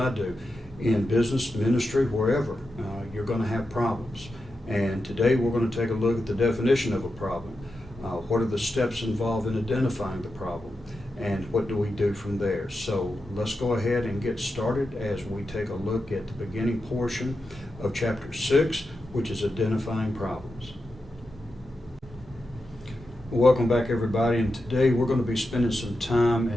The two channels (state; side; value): normal; both; correlation 0.89